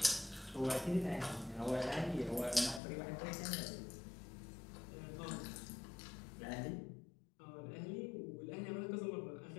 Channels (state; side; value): drops out; right; at 2.8 s